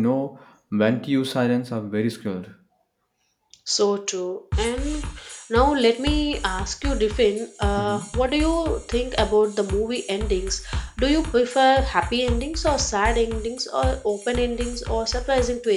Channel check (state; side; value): identical; both; correlation 1.00